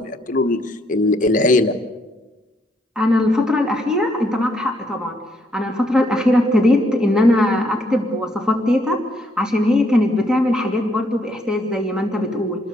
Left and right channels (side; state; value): both; normal; correlation 0.71